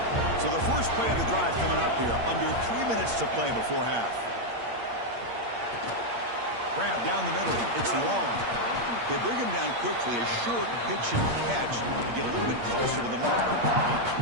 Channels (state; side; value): late; left; 8.6 ms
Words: So the first play of the drive coming up here. Under 3 minutes to play before half. Grab down the middle. It's long. They bring him down quickly, a short pitch and catch to get a little bit closer to the mark.